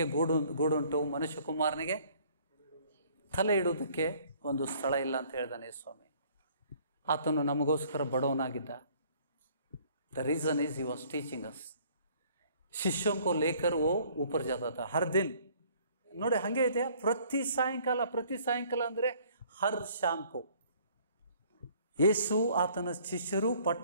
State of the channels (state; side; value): inverted; both; correlation -0.58